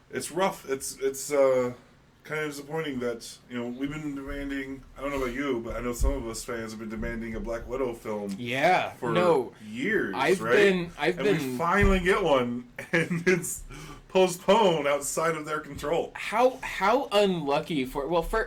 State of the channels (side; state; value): both; identical; correlation 1.00